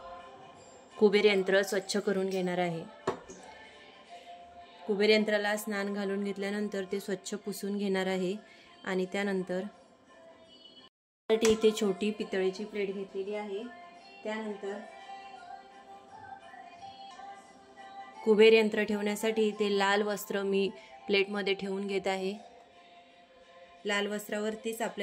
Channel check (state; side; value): identical; both; correlation 1.00